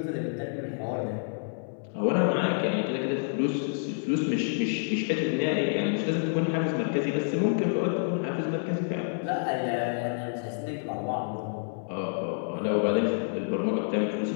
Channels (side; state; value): right; silent; 59 dB below the other